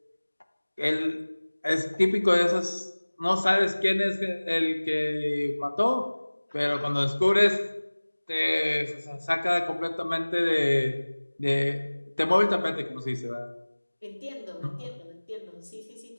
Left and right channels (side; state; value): both; inverted; correlation -1.00